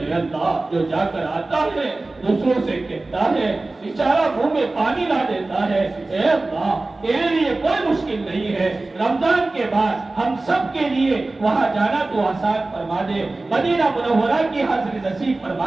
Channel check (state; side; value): quieter; left; 3.1 dB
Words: اللہ جو جا کر آتا ہے دوسروں سے کہتا ہے بیچارہ منہ میں پانی لا دیتا ہے. اے اللہ تیرے لیے کوئی مشکل نہیں ہے. رمضان کے بعد ہم سب کے لیے وہاں جانا تو آسان فرما دے. مدینہ منورہ کی حاضری نصیب